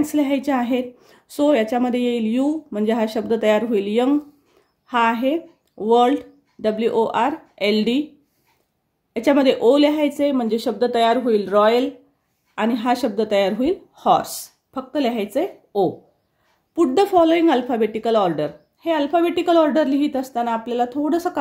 लिहायचे आहेत। सो याच्यामध्ये येईल यू म्हणजे हा शब्द तयार होईल यंग, हा आहे वर्ल्ड WORLD, याच्यामध्ये ओ लिहायचे म्हणजे शब्द तयार होईल रॉयल आणि हा शब्द तयार होईल हॉर्स, फक्त लिहायचे ओ। Put the following alphabetical order, हे अल्फाबेटिकल ऑर्डर लिहित असताना आपल्याला थोडंसं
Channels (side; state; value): both; identical; correlation 1.00